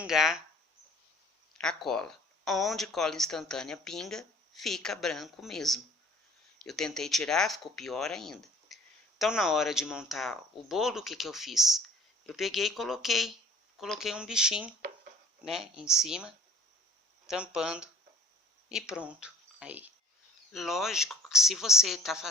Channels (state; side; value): normal; both; correlation 0.52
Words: a cola. Onde cola instantânea pinga, fica branco mesmo. Eu tentei tirar, ficou pior ainda. Então, na hora de montar o bolo, o que eu fiz? Eu peguei e coloquei um bichinho, né, em cima, tampando e pronto. Aí, lógico que se você está